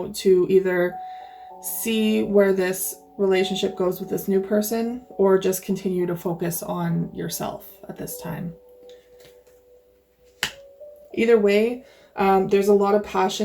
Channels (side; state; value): both; identical; correlation 1.00